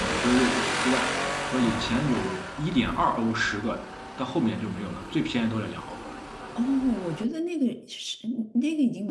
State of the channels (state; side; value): identical; both; correlation 1.00